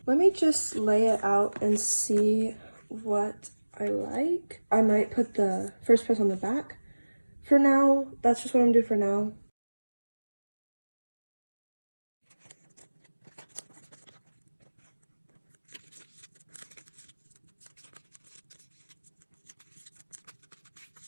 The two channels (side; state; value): both; inverted; correlation -1.00